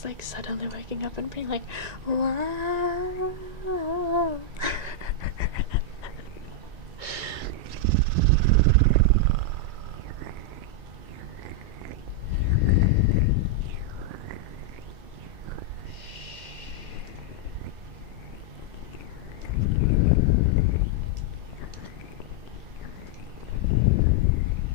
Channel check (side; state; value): left; late; 2.2 ms